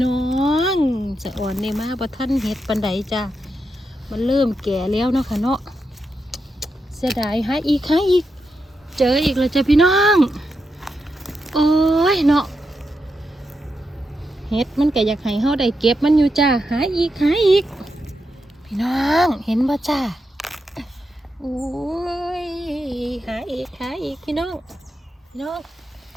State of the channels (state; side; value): normal; both; correlation 0.85